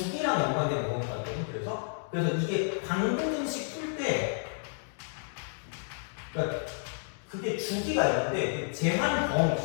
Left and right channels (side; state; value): right; silent; digital silence